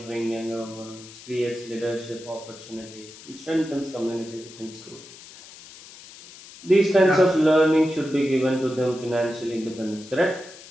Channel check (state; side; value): noise; left; hiss, 18 dB below the sound